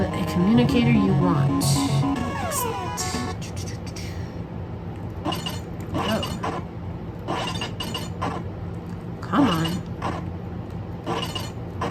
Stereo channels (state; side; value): identical; both; correlation 1.00